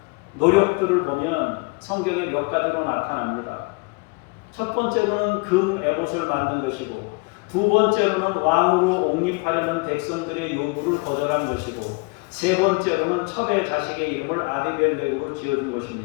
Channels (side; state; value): right; quieter; 30.2 dB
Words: 노력들을 보면 성경에 몇 가지로 나타납니다. 첫 번째로는 금 에봇을 만든 것이고, 두 번째로는 왕으로 옹립하려는 백성들의 요구를 거절한 것이고, 세 번째로는 첩의 자식의 이름을 아비멜렉으로 지어준